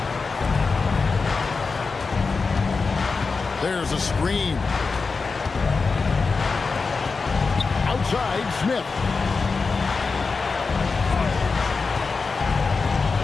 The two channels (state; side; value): quieter; right; 4.5 dB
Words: There's a screen. Outside, Smith.